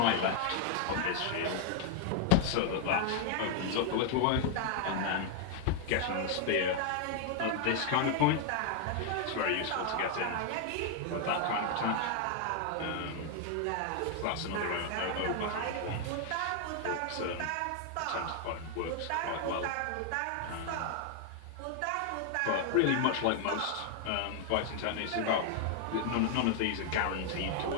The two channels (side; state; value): both; different; correlation 0.00